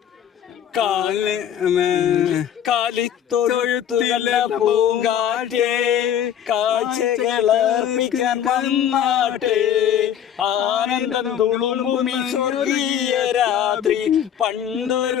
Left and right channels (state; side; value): quieter; right; 9.6 dB